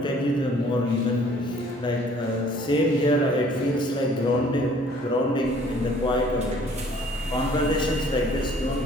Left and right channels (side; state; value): both; normal; correlation 0.56